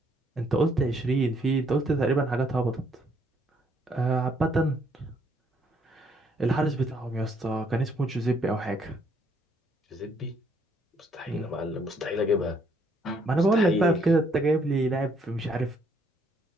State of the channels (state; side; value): normal; both; correlation 0.68